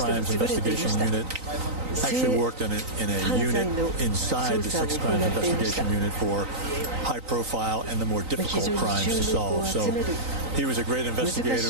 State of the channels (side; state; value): left; late; 3.9 ms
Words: investigation unit. Actually worked in a unit inside the sex crimes investigation unit for high profile and the more difficult crimes to solve. So he was a great